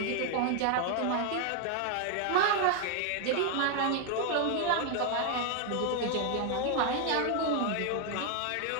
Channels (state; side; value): different; both; correlation 0.00